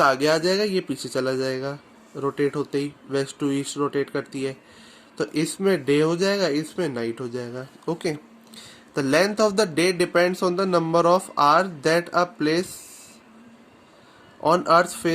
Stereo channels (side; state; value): both; identical; correlation 1.00